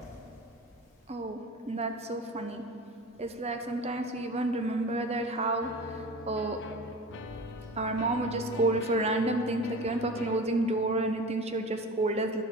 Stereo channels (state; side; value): normal; both; correlation 0.35